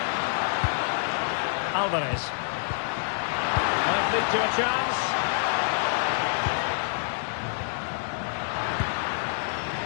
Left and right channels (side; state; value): right; silent; digital silence